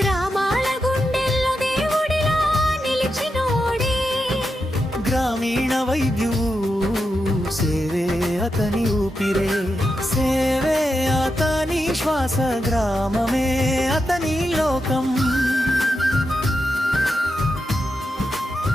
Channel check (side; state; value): both; normal; correlation 0.87